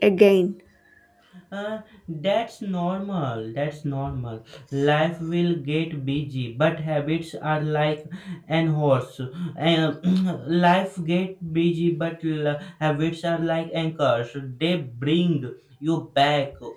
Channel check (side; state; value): both; identical; correlation 1.00